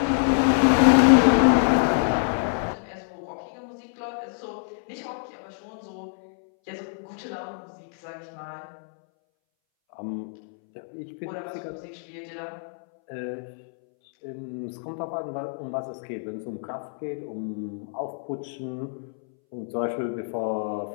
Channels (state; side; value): silent; right; 61 dB below the other